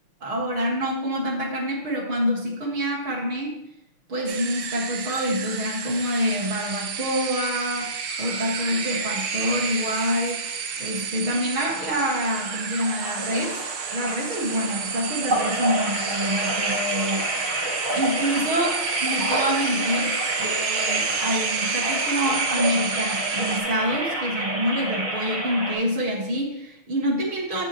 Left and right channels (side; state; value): left; late; 6.7 ms